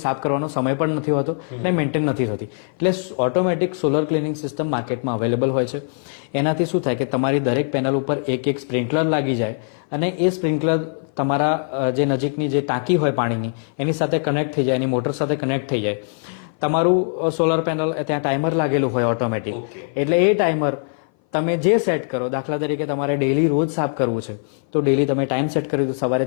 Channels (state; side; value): silent; right; 58 dB below the other